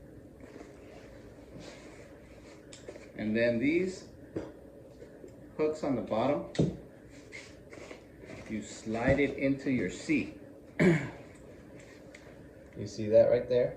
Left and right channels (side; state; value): both; identical; correlation 1.00